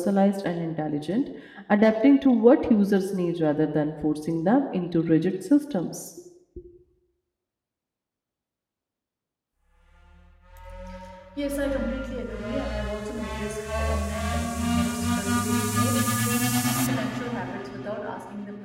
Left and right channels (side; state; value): both; identical; correlation 1.00